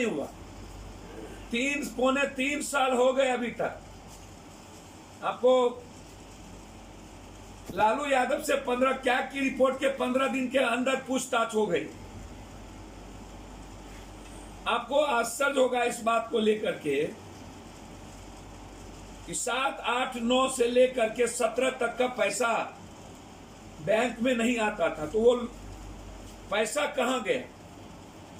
हुआ। 3 साल हो गए अभी तक। आपको लालू यादव से 15 कैग की रिपोर्ट के 15 दिन के अंदर पूछताछ हो गई। आपको आश्चर्य होगा इस बात को लेकर के कि 7, 8, 9 से लेकर के 17 तक का पैसा बैंक में नहीं आता था, तो वो पैसा कहां गया?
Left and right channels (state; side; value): identical; both; correlation 1.00